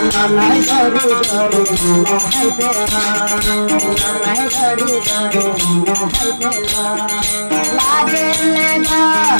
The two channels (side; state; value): both; inverted; correlation -1.00